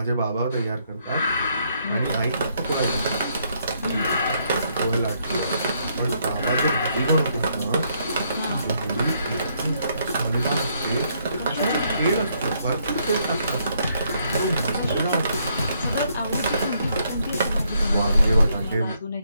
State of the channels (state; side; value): inverted; both; correlation -0.72